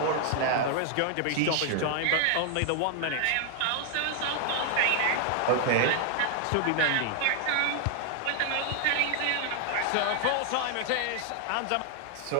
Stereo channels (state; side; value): different; both; correlation 0.00